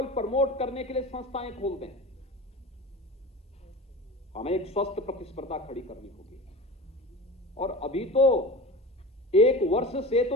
प्रमोट करने के लिए संस्थाएं खोल दें। हमें एक स्वस्थ प्रतिस्पर्धा खड़ी करनी होगी। और अभी तो एक वर्ष से तो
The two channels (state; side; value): normal; both; correlation 0.32